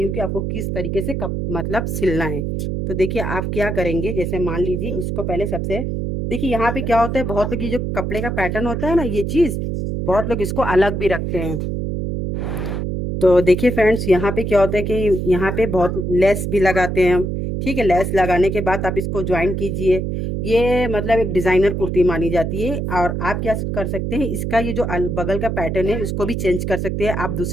हूँ कि आपको किस तरीके से मतलब सिलना है। तो देखिए आप क्या करेंगे, जैसे मान लीजिए इसको पहले सबसे, देखिए यहाँ पे क्या होता है, बहुत लोग ये जो कपड़े का पैटर्न होता है ना, ये चीज बहुत लोग इसको अलग भी रखते हैं। तो देखिए फ्रेंड्स, यहाँ पे क्या होता है कि यहाँ पे बहुत लेस भी लगाते हैं हम। ठीक है, लेस लगाने के बाद आप इसको ज्वाइन कीजिए। ये मतलब एक डिजाइनर कुर्ती मानी जाती है। और आप क्या कर सकते हैं, इसका ये जो बगल का पैटर्न है इसको भी चेंज कर सकते हैं। आप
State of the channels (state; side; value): noise; right; hum, 2 dB below the sound